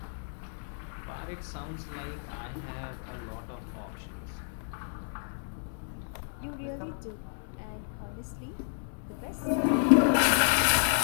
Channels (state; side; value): silent; right; digital silence